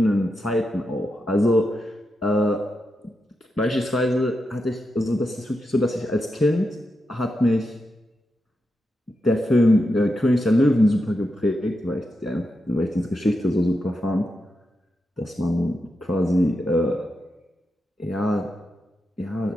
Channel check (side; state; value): both; normal; correlation 0.87